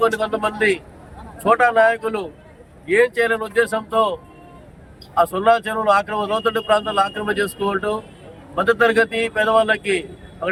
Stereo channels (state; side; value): identical; both; correlation 1.00